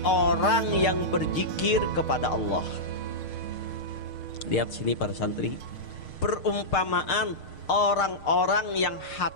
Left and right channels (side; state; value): right; late; 6.6 ms